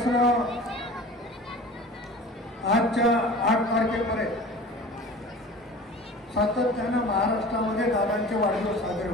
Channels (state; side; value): normal; both; correlation 0.40